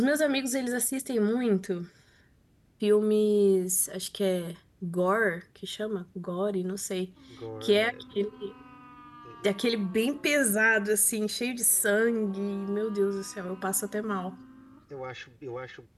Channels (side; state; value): both; identical; correlation 1.00